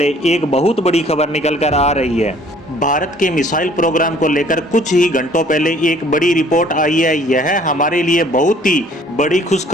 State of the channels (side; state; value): both; normal; correlation 0.56